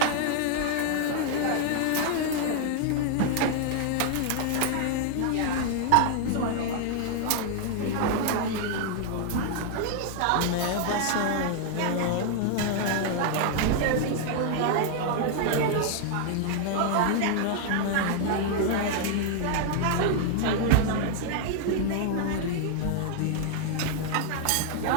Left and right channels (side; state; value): both; different; correlation 0.00